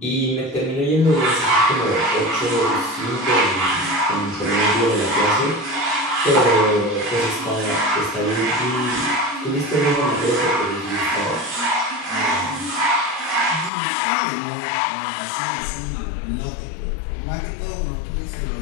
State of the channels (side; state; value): right; drops out; at 13.7 s